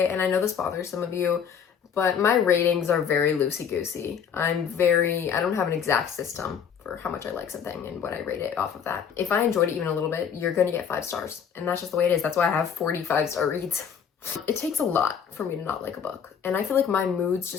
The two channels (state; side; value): quieter; right; 7.5 dB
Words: And I know this bothers some of you, but my ratings are very loosey-goosey. I don't have an exact system for how much I like something and what I rate it off of that. If I enjoyed it even a little bit, you're gonna get 5 stars. And that's just the way it is. That's why I have 45-star reads. It takes a lot for me to not like a book. And I feel like my moods